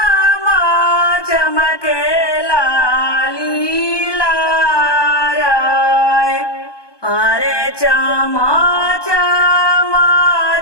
चमकेला लीला राय। अरे चमा चमा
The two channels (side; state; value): right; late; 1.2 ms